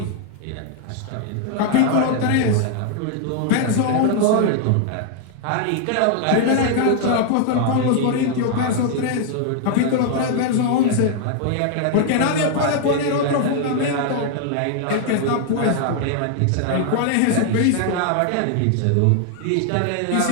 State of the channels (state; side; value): different; both; correlation 0.00